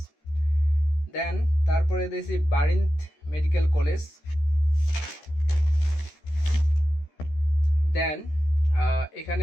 দেন তারপরে দিছি বারিন্থ মেডিকেল কলেজ। দেন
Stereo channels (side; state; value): right; late; 13 ms